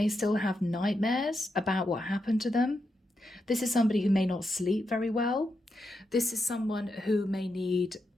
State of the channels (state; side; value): normal; both; correlation 0.85